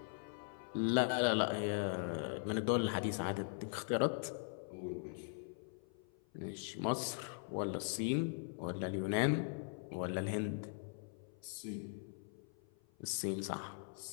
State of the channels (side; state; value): right; silent; 51 dB below the other